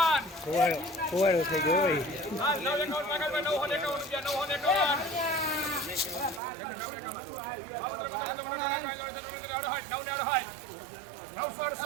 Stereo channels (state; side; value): drops out; left; at 6.4 s